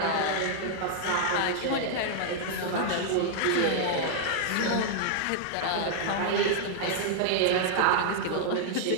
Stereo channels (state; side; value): different; both; correlation -0.01